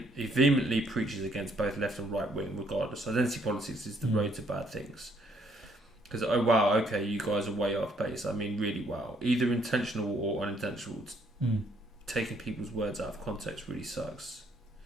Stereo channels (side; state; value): both; normal; correlation 0.68